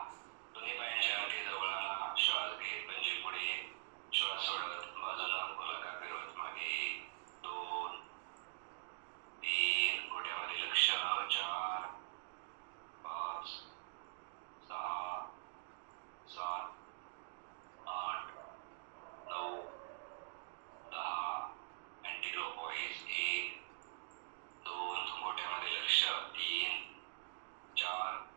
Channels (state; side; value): silent; left; digital silence